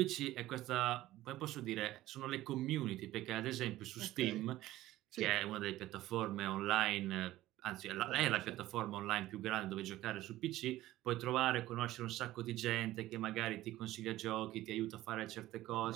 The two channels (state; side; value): quieter; left; 15.7 dB